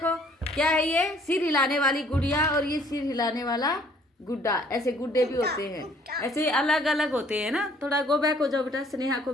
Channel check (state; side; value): normal; both; correlation 0.60